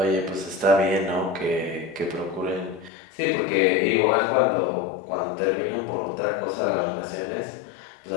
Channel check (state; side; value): drops out; right; at 2.9 s